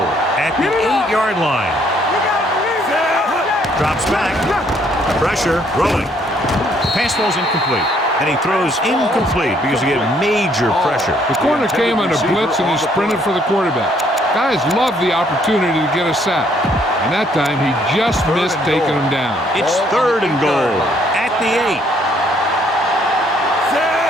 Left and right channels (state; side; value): normal; both; correlation 0.66